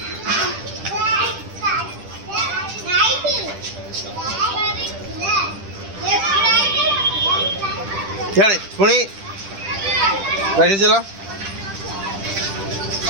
चले पुणी राइट चलो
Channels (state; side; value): late; left; 10 ms